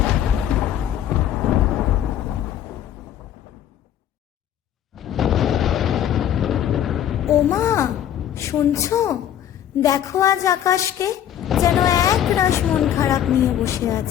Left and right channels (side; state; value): right; quieter; 10.5 dB